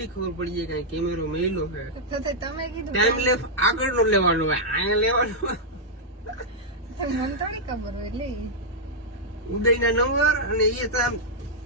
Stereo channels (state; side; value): normal; both; correlation -0.07